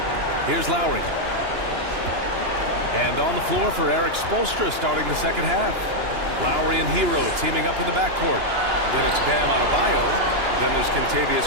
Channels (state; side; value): late; left; 2.9 ms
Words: Here's Lowry. And on the floor for Eric Spoelstra starting the second half. Lowry and Hero teaming up in the backcourt. Then it's Bam Adebayo. Then there's